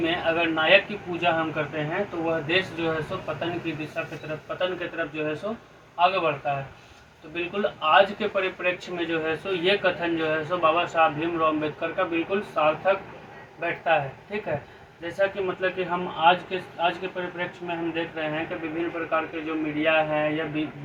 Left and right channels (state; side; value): identical; both; correlation 1.00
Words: अगर नायक की पूजा हम करते हैं तो वह देश जो है सो पतन की दिशा की तरफ, पतन की तरफ जो है सो आगे बढ़ता है। तो बिल्कुल आज के परिप्रेक्ष्य में जो है सो ये कथन जो है सो बाबा साहब भीमराव अम्बेडकर का बिल्कुल सार्थक बैठता है, ठीक है। जैसा कि मतलब कि हम आज के परिप्रेक्ष्य में हम देख रहे हैं कि विभिन्न प्रकार के जो मीडिया है या